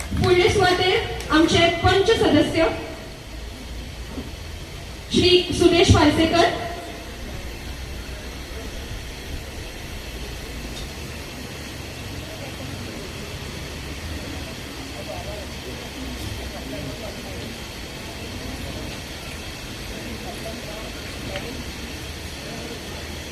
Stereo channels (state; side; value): identical; both; correlation 1.00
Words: फुडले सुवातेर आमचे पंच सदस्य श्री सुदेश पार्सेकर,